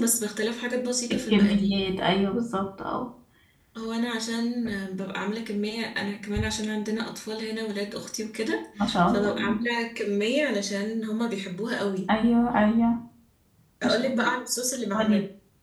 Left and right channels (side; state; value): both; identical; correlation 1.00